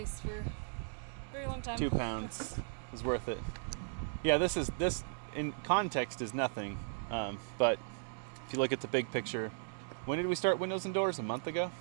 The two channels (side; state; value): left; silent; digital silence